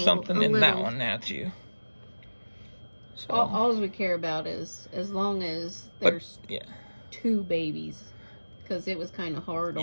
something in that one now too. So All we care about is as long as there's 2 babies, because it was kind of hard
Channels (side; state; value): both; inverted; correlation -1.00